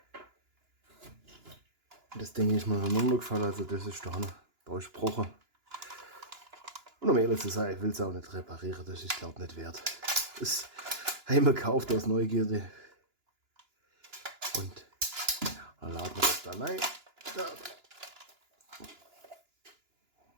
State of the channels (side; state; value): left; late; 2.9 ms